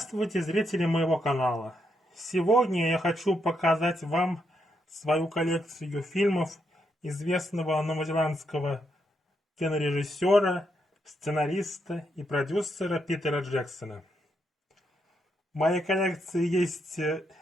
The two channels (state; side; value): normal; both; correlation 0.80